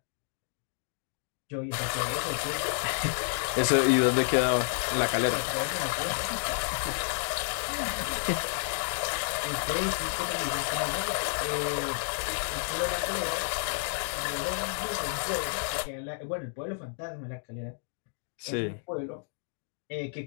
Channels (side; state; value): right; silent; digital silence